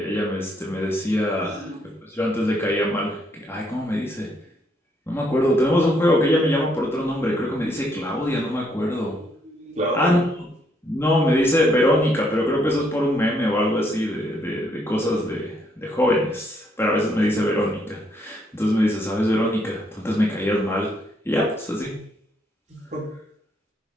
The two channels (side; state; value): both; normal; correlation 0.71